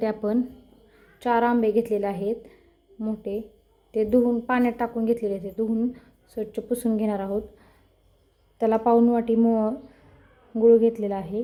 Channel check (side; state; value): both; identical; correlation 1.00